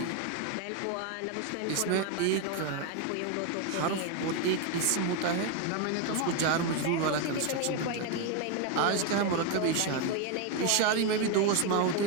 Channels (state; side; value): different; both; correlation 0.01